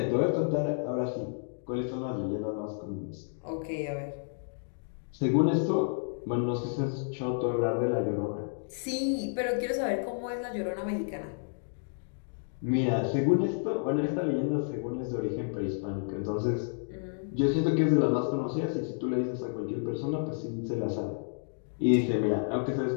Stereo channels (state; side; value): silent; right; digital silence